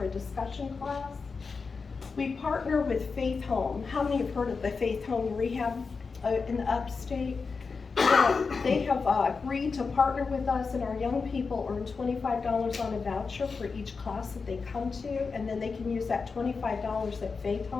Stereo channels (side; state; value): right; quieter; 4.8 dB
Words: a discussion class. We partner with Faith Home. How many have heard of the Faith Home Rehab in the upstate? They have agreed to partner with us, and our young people earn $25 on a voucher for each class that they come to, and then they can use that $25 at Faith